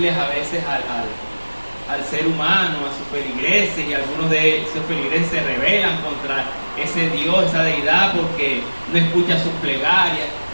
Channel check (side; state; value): both; inverted; correlation -1.00